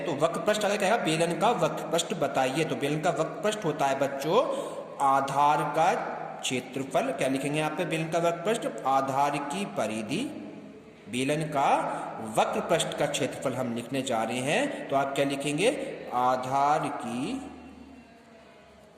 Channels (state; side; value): identical; both; correlation 1.00